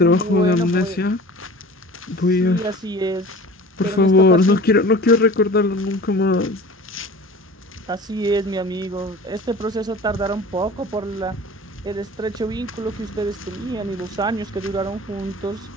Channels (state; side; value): normal; both; correlation 0.40